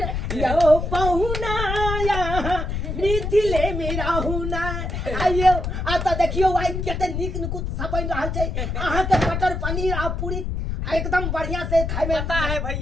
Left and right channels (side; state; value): left; noise; rumble, 3 dB below the sound